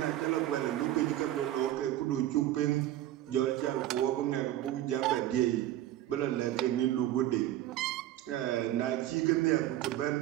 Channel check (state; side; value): quieter; left; 13.5 dB